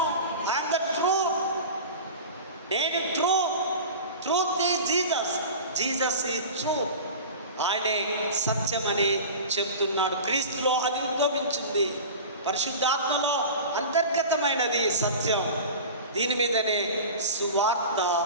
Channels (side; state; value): both; inverted; correlation -0.33